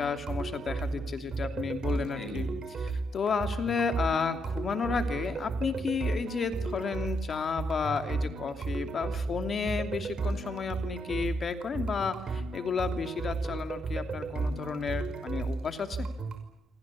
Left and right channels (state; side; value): normal; both; correlation 0.78